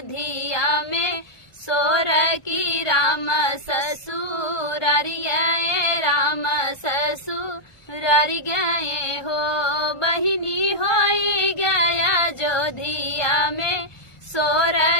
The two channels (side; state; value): right; late; 1.4 ms